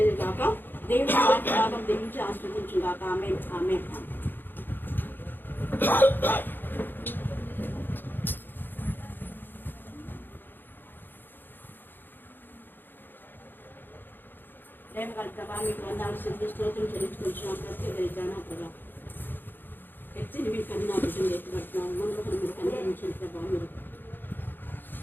కాక. దేవుడి వాక్య భాగం దీవించి ఆస్వాదించుగాక. ఆమేన్, ఆమేన్. ప్రేమ కలుగుతావా? మీకు వందాలు సిద్ధి స్తోత్రం చెల్లించుకుంటున్నాం. ప్రత్యేకరిద్దానా ప్రభా, ఎత్తిని మీకు కన్నా బిడ్డలు ఎత్తుపడుతున్నాం. మనకు మీరు కనిపించిన ప్రభావ మీరు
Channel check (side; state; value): right; late; 0.094 ms